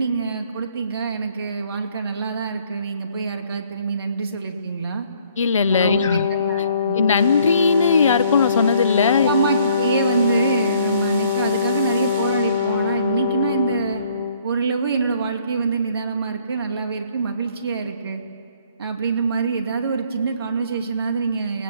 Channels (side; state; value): both; inverted; correlation -0.63